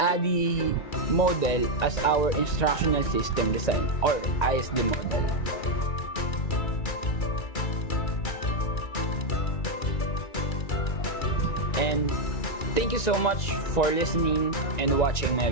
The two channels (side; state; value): right; late; 1.9 ms